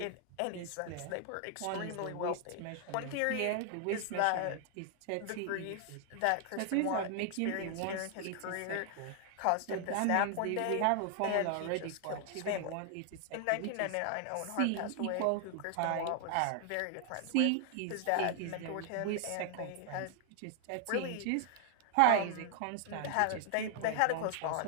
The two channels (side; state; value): both; different; correlation 0.00